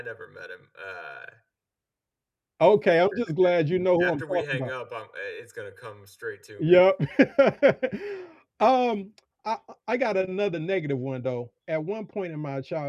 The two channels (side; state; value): both; identical; correlation 1.00